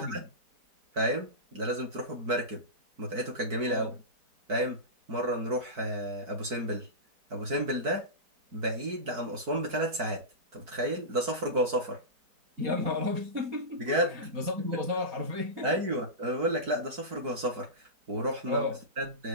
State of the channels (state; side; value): late; left; 4.6 ms